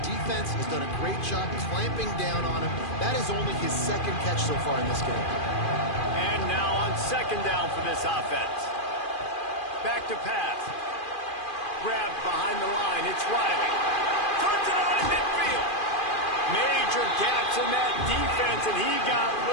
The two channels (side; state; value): right; late; 2.4 ms